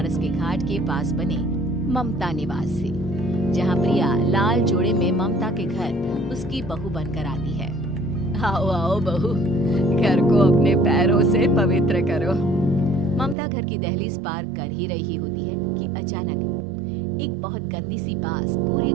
के घाट के पास बने ममता निवास से, जहाँ प्रिया लाल जोड़े में ममता के घर उसकी बहू बनकर आती है। आओ आओ बहू, घर को अपने पैरों से पवित्र करो। ममता घर की दहलीज पार कर ही रही होती है कि अचानक एक बहुत गंदी सी बास पूरे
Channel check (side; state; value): left; drops out; at 13.4 s